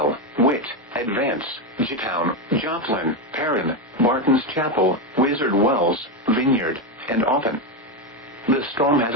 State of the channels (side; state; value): both; normal; correlation 0.10